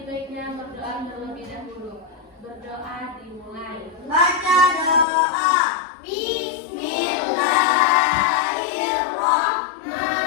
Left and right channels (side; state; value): right; drops out; at 5.1 s